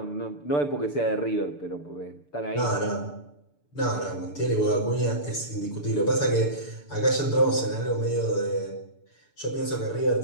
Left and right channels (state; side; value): late; right; 6.9 ms